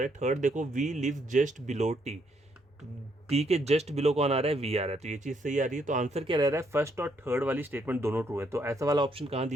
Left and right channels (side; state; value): both; normal; correlation 0.73